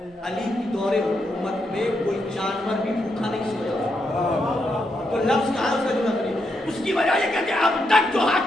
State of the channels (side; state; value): both; normal; correlation 0.81